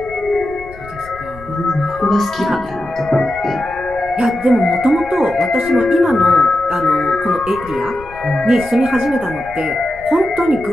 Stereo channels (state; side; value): noise; left; rumble, 19 dB below the sound